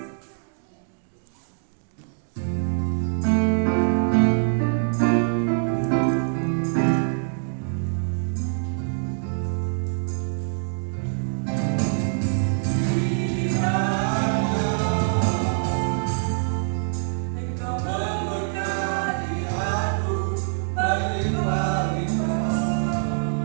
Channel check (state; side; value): silent; left; digital silence